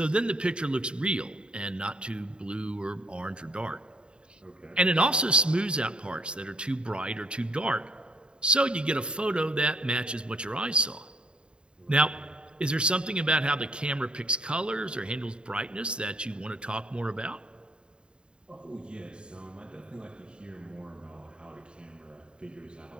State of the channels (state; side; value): late; left; 0.052 ms